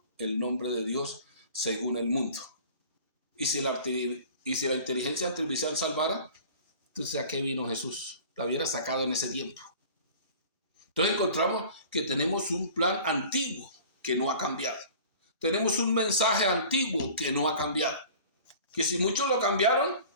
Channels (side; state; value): both; inverted; correlation -0.44